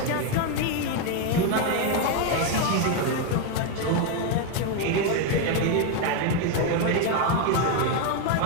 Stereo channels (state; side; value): different; both; correlation 0.01